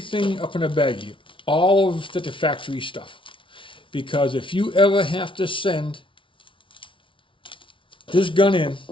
up in a baggie, all of the factory stuff, because if you ever have to send this gun in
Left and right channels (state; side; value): late; right; 0.25 ms